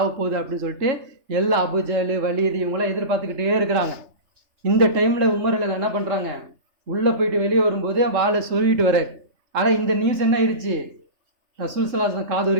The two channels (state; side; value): late; left; 3.3 ms